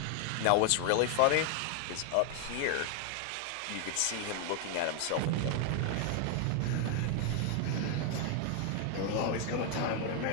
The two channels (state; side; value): different; both; correlation 0.00